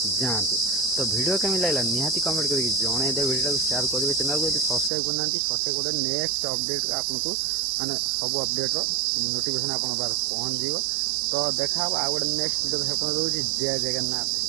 जातु। तो वीडियो केमी लगा निहाती कमेंट करके जनईदे वीडियो को शेयर करेंगे चैनल को सब्सक्राइब करना सब्सक्राइब कर नेक्स्ट अपडेट आपको माने सब अपडेट नोटिफिकेशन आप पहुँच जाव। तो देखा आउ गोटे नेक्स्ट वीडियो देखा रोज जय जगन्नाथ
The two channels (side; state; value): left; drops out; at 4.9 s